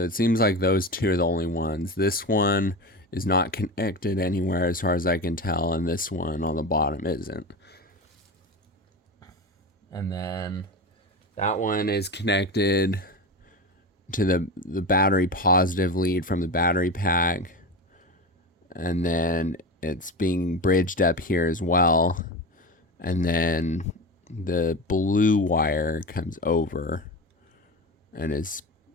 it seems like those two are the only ones. This one is not connected anywhere as far as I can tell, and this one on the bottom isn't. And then That one is connected to the battery positive lead from the battery pack. And then it's being bridged up here as well. And then the blue wire comes over and is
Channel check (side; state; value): both; normal; correlation 0.25